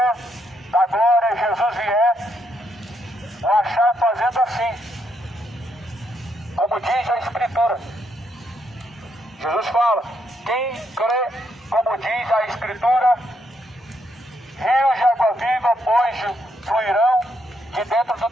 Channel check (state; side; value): normal; both; correlation 0.76